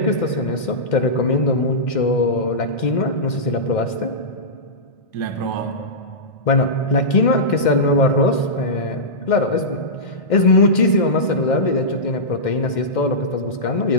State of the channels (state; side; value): late; right; 2.1 ms